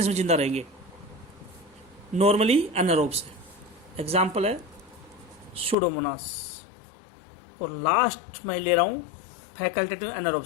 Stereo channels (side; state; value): right; drops out; at 5.8 s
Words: में जिंदा रहेंगे, नॉर्मली एनारोब्स है। एग्जाम्पल है सूडोमोनास। और लास्ट मैं ले रहा हूं फैकल्टेटिव